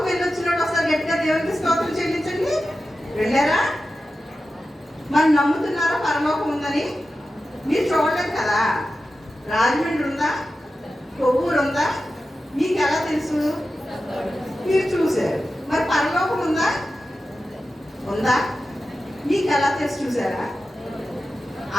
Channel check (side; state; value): both; normal; correlation 0.93